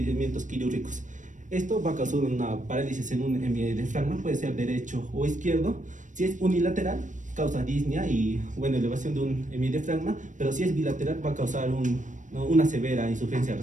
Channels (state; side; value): late; left; 0.37 ms